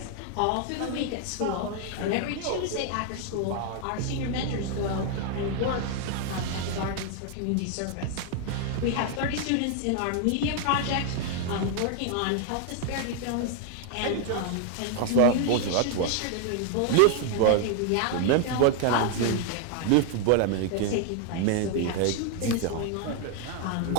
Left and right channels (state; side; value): different; both; correlation 0.00